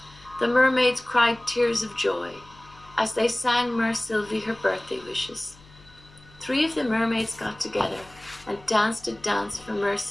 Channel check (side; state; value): left; noise; hum, 24 dB below the sound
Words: The mermaids cried tears of joy as they sang Mer Sylvie her birthday wishes. 3 of the mermaids got together and danced a dance for Mer